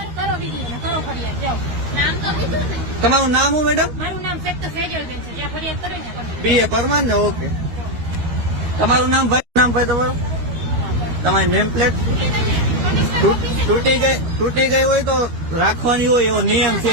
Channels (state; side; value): late; left; 13 ms